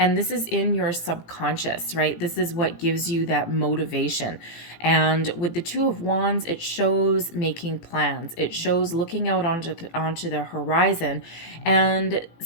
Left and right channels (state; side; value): late; right; 18 ms